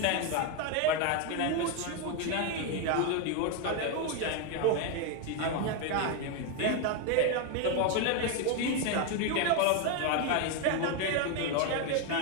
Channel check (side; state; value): both; different; correlation 0.01